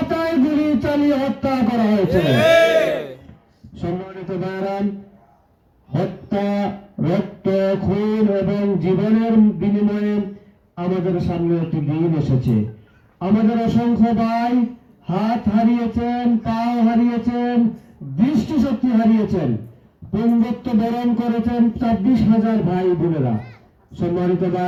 গুলি চালিয়ে হত্যা করা হয়েছে। সম্মানিত ভাইরান, হত্যা, রক্ত, খুন এবং জীবনের বিনিময়ে আমাদের সামনে একটি দিন এসেছে। আমাদের অসংখ্য ভাই হাত হারিয়েছেন, পাও হারিয়েছেন, দৃষ্টিশক্তি হারিয়েছেন, পুঙ্গত্ব বরণ করেছেন 26,000 ভাই বোনেরা। সম্মানিত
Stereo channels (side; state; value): both; identical; correlation 1.00